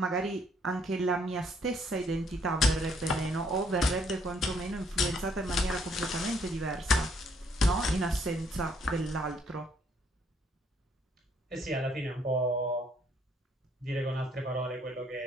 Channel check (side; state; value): both; normal; correlation 0.68